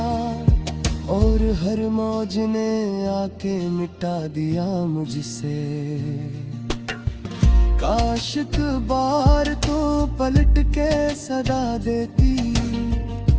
और हर मौज ने आके मिटा दिया मुझसे। काश एक बार तो पलट के सदा देती,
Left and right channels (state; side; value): identical; both; correlation 1.00